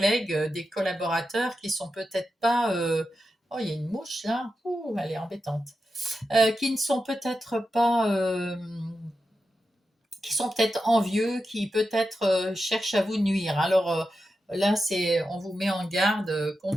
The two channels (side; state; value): both; normal; correlation 0.90